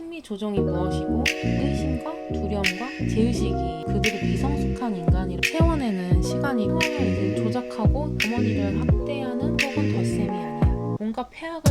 조정이 무엇이고 의심과 두려움과 제의식이 그들이 미성숙한 인간이라 채워내는 시간이 상황을 이제 조작하고 어머니를 학대하는 혹은 덧셈이 아니야. 뭔가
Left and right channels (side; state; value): both; identical; correlation 1.00